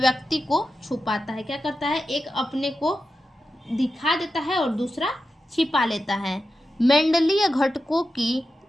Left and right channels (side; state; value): both; normal; correlation 0.91